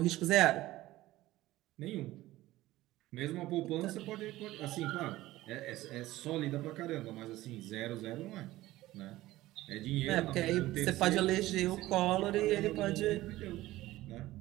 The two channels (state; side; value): quieter; left; 16.8 dB